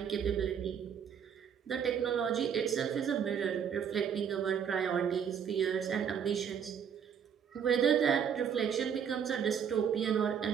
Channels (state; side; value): quieter; left; 7.8 dB